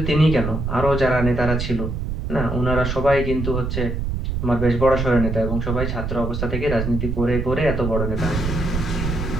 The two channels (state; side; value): noise; right; rumble, 3 dB below the sound